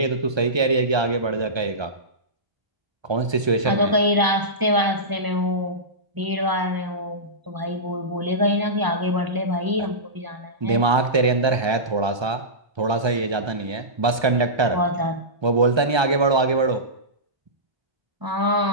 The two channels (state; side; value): late; left; 1.3 ms